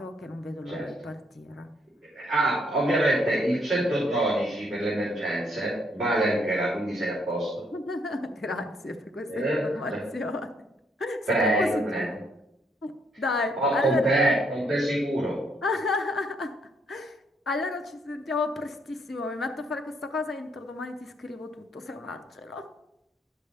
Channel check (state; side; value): normal; both; correlation 0.71